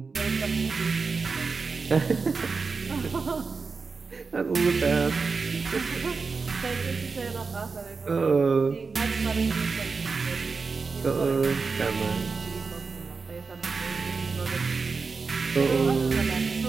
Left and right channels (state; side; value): quieter; left; 4.6 dB